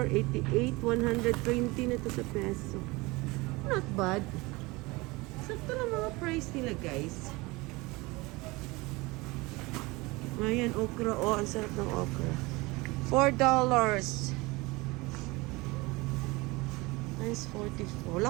88, 120 na to sa peso. Not bad. Sakto na mga price nila, guys. Ayan, okra. Oh, ang sarap ng okra. $4. Times 44.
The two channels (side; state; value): left; quieter; 23.3 dB